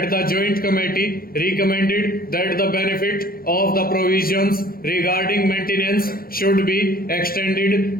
the Joint Committee recommended that the benefit of the provisions regarding maintenance should be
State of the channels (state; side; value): late; right; 0.43 ms